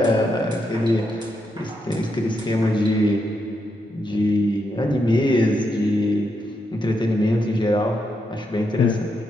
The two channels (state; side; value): normal; both; correlation 0.81